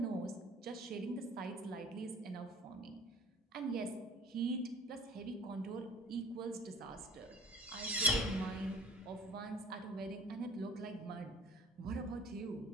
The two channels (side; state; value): both; normal; correlation 0.48